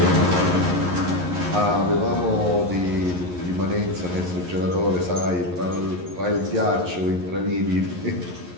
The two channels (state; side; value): late; left; 11 ms